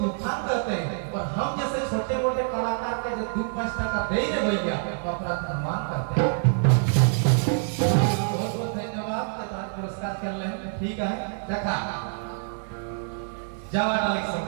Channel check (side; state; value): left; silent; 61 dB below the other